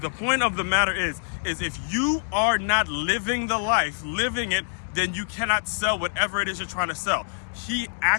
The point of the matter is if you are not living the life, living it, then you cannot sell whatever it is you're trying to sell. He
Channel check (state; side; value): silent; right; digital silence